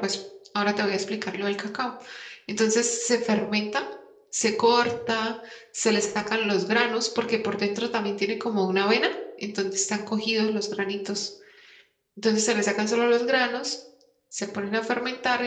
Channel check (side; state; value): both; identical; correlation 1.00